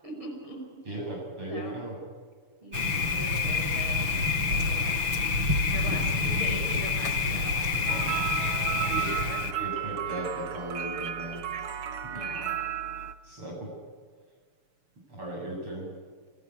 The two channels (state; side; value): late; left; 6.9 ms